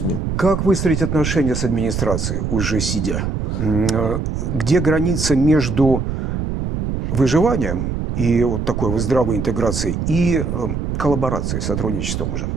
Как выстроить отношения с администрацией, уже сидя? Где граница между выживанием и вот такой вот здравой интеграцией и коллаборацией, сотрудничеством уже?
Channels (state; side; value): noise; right; rumble, 2 dB below the sound